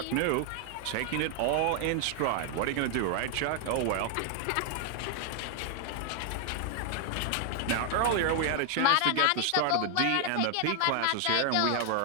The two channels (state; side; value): different; both; correlation 0.00